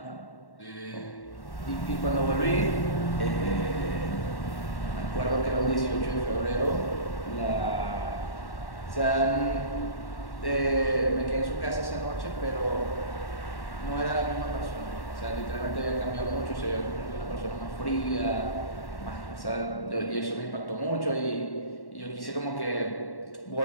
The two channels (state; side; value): late; right; 1.1 ms